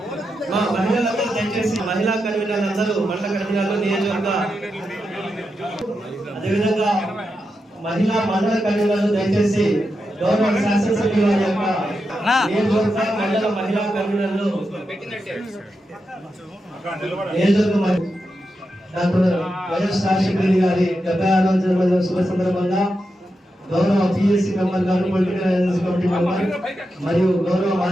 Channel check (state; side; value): normal; both; correlation 0.87